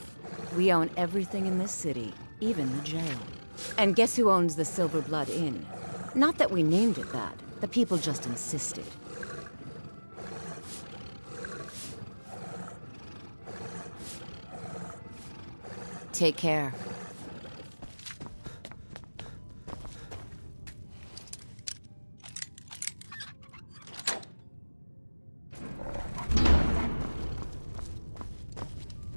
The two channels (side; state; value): both; inverted; correlation -1.00